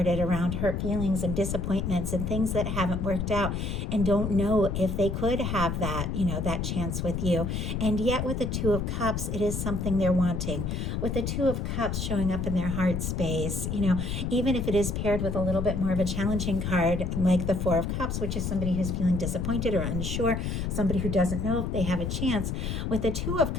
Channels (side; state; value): left; noise; rumble, 2 dB below the sound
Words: around hurt feelings and disappointments and things that haven't worked out, and don't know if they could have that, that chance with you. And yet with the Two of Cups, it is something they're wanting. With the Two of Cups showing up in their heart space, even if it is paired with a little bit more of a challenging card like the Four of Cups, which is somebody who's feeling disappointed or unsure, somebody who doesn't know if they have a chance. With the Two of